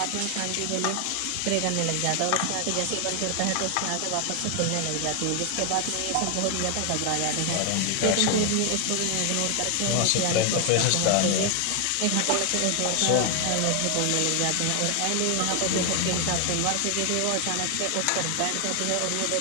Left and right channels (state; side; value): different; both; correlation 0.00